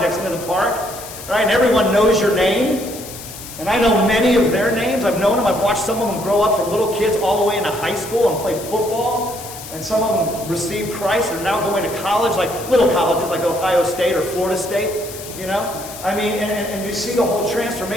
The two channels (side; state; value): left; noise; hiss, 13 dB below the sound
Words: into the park, right, and everyone knows your name, and I know many of their names. I've known them. I've watched some of them grow up from little kids all the way into high school and play football. And some of them received Christ and are now going to college, like little colleges like Ohio State or Florida State, you know? I mean, and you see the whole